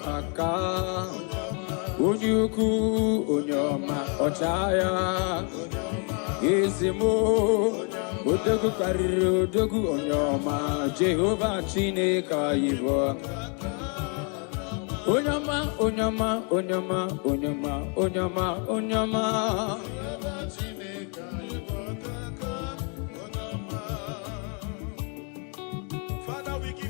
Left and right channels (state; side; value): quieter; right; 37.9 dB